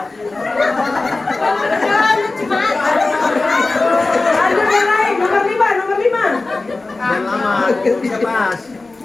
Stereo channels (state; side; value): quieter; right; 3.4 dB